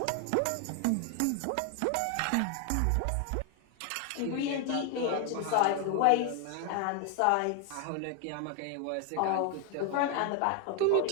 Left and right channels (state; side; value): different; both; correlation 0.00